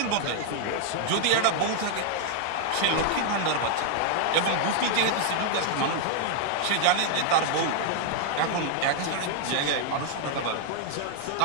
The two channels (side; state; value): both; different; correlation 0.00